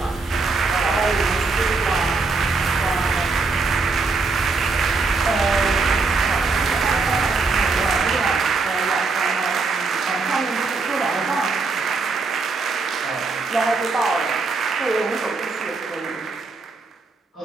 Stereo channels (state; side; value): quieter; left; 4.1 dB